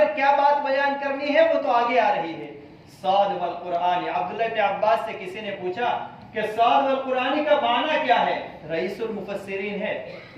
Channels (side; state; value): both; identical; correlation 1.00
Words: کیا بات بیان کرنی ہے وہ تو آگے آ رہی ہے۔ صاد والقرآن، عبداللہ بن عباس سے کسی نے پوچھا کہ صاد والقرآن کا معنی کیا ہے؟ رئیس المفسرین ہے،